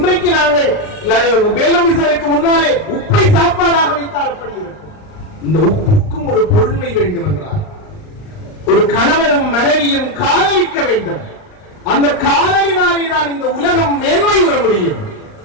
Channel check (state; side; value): late; right; 39 ms